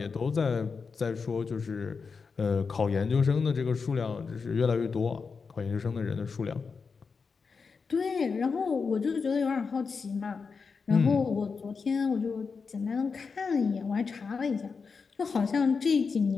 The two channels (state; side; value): quieter; right; 5.1 dB